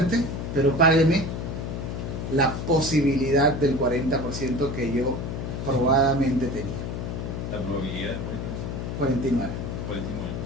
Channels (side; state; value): left; noise; hum, 4 dB below the sound